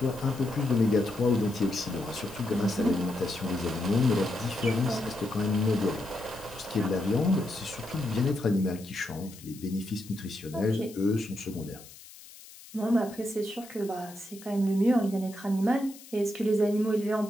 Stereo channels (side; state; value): left; noise; hiss, 19 dB below the sound